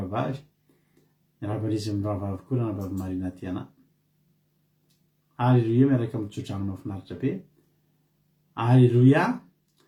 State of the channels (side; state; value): both; identical; correlation 1.00